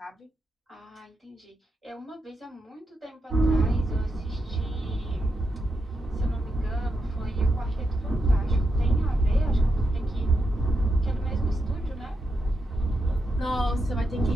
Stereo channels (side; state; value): both; normal; correlation 0.85